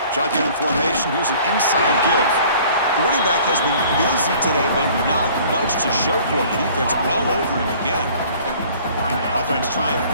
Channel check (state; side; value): inverted; both; correlation -0.52